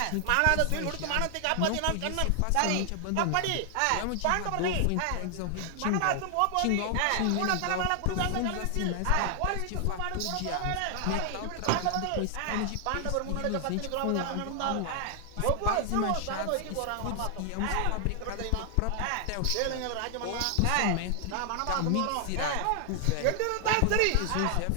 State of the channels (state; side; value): different; both; correlation 0.00